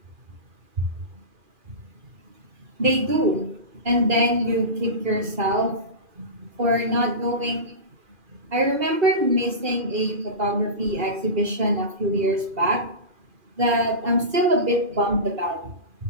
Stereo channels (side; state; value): left; late; 2.4 ms